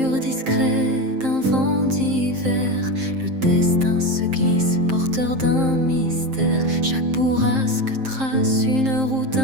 discret d'un vent d'hiver, le destin se glisse, porteur d'un mystère. Chaque bourrasque trace une route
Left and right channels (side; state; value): left; late; 7.6 ms